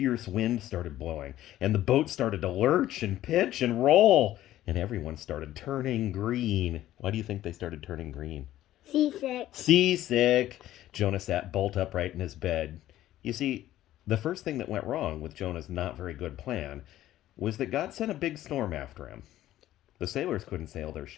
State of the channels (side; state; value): right; quieter; 13.8 dB